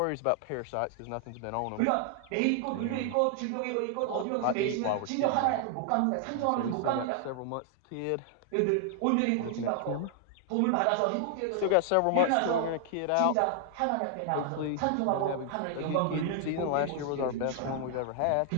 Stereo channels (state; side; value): different; both; correlation 0.00